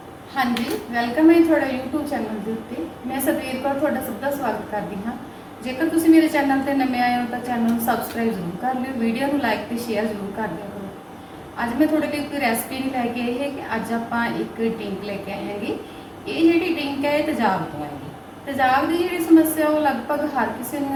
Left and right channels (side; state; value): both; identical; correlation 1.00